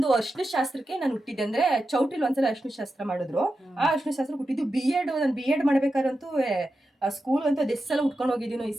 ಅರ್ಶಿನ ಶಾಸ್ತ್ರಕ್ಕೆ ನಾನು ಹುಟ್ಟಿದ್ದೆ. ಅಂದ್ರೆ ಚೌಟ್ರಿಲ್ ಒಂದ್ಸಲ ಅರ್ಶಿನ ಶಾಸ್ತ್ರ ಮಾಡಿದ್ರು. ಆ ಅರ್ಶಿನ ಶಾಸ್ತ್ರ ಹುಟ್ಟಿದ್ದು ನಾನು ಬಿ ಎಡ್ ಮಾಡ್ಬೇಕಾರಂತೂ ಸ್ಕೂಲ್ ಅಂತೂ ಅದೆಷ್ಟು ಸಲ ಉಟ್ಕೊಂಡು ಹೋಗಿದ್ದೀನೋ ಈ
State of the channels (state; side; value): normal; both; correlation 0.90